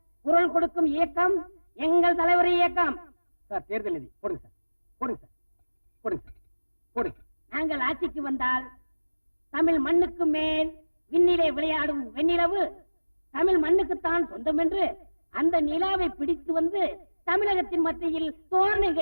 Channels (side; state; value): both; inverted; correlation -1.00